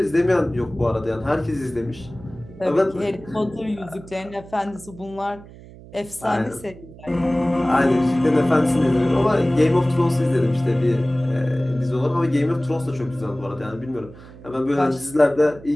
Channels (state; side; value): noise; right; hum, 19 dB below the sound